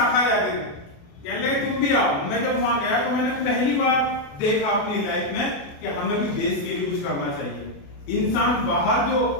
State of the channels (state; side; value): late; right; 28 ms